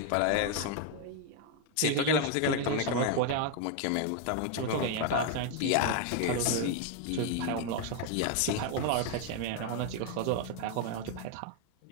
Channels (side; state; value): both; different; correlation 0.00